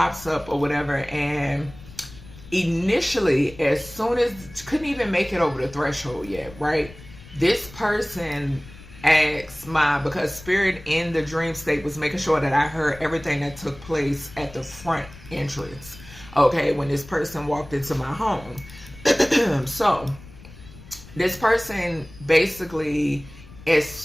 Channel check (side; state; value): left; noise; rumble, 19 dB below the sound